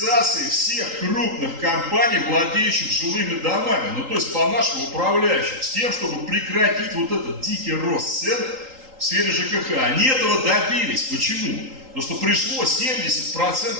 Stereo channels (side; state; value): left; late; 3.8 ms